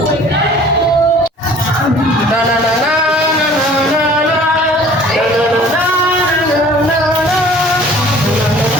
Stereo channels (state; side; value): normal; both; correlation 0.50